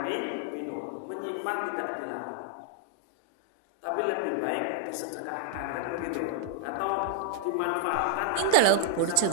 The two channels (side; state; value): both; different; correlation 0.00